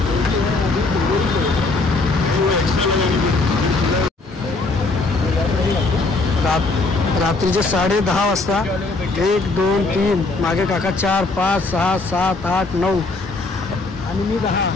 रात्रीचे 10:30 वाजता 1, 2, 3 मागे काका 4, 5, 6, 7, 8, 9 आणि मी 10.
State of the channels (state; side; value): quieter; right; 3.5 dB